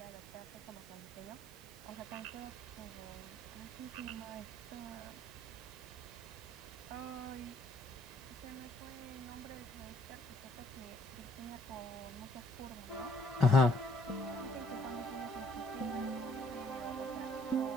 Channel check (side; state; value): both; normal; correlation 0.65